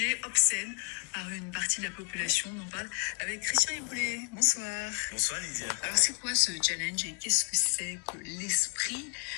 obscène par une partie de la population. On en parle avec Christian Iboulet. Bonsoir. Bonsoir Lydia. Alors c'est quoi ce challenge et qu'est-ce que c'est que l'esprit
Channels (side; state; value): right; quieter; 37.5 dB